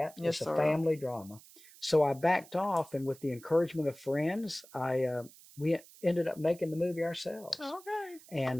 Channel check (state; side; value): noise; right; hiss, 22 dB below the sound